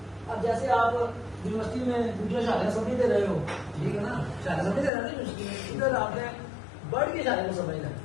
अब जैसे आप यूनिवर्सिटी में दूसरे इशारे समझ दे रहे हो, ठीक है ना, इशारे समझ दे रहे हो यूनिवर्सिटी में, इधर आपने बर्ड के इशारे को समझना,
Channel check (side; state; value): right; drops out; at 4.9 s